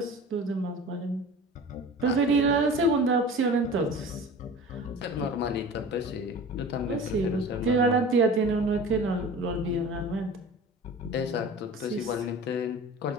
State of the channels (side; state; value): both; normal; correlation 0.38